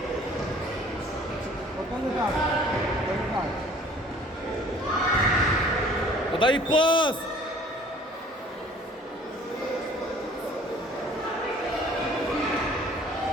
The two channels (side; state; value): both; normal; correlation 0.52